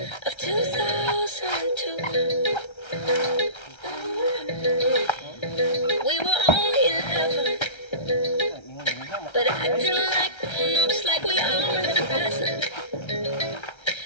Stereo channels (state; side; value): late; right; 1.3 ms